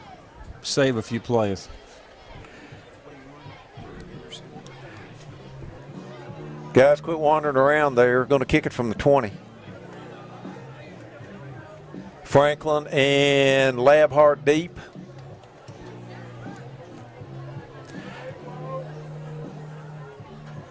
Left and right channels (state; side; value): identical; both; correlation 1.00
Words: save a few plays. Guys, quit wandering around there. Going to kick it from the 20. Franklin and Labhart deep.